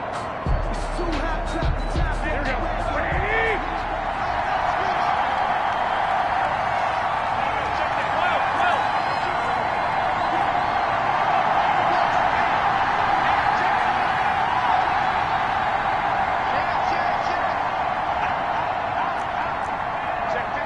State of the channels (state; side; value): identical; both; correlation 1.00